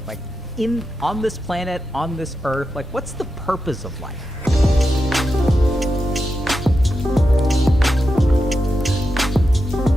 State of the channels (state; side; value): normal; both; correlation 0.88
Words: Like, on this planet, on this earth, like, what's the purpose of life?